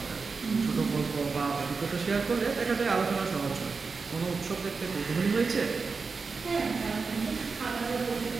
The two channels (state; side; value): quieter; left; 4.7 dB